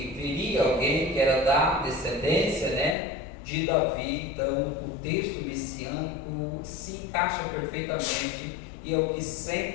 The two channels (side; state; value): right; drops out; at 3.0 s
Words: viria alguém que era da descendência, né, de Davi. Então o texto messiânico se encaixa perfeitamente, e é o que